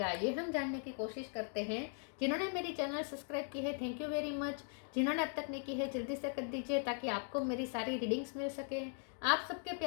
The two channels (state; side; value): silent; right; 52 dB below the other